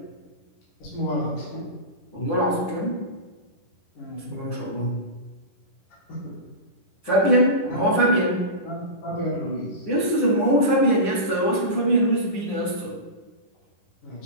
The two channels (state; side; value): late; right; 10 ms